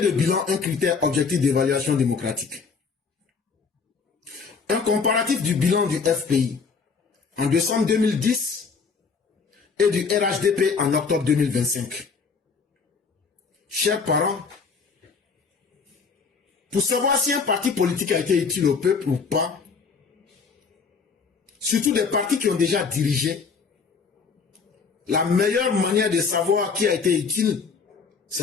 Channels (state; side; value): quieter; right; 5.3 dB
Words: bilan, un critère objectif d'évaluation démocratique. Un comparatif du bilan du FPI en décembre 2010 et du RHDP en octobre 2025. Chers parents, pour savoir si un parti politique a été utile au peuple ou pas, surtout des partis qui ont déjà dirigé, la meilleure manière de savoir qui a été utile,